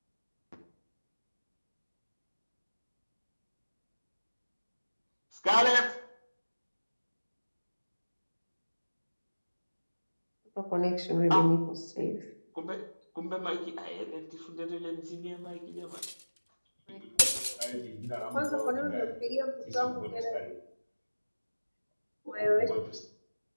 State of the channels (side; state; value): both; inverted; correlation -1.00